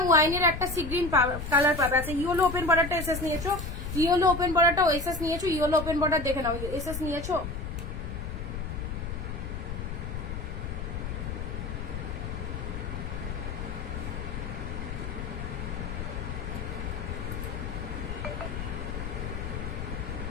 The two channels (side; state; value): left; noise; rumble, 5 dB below the sound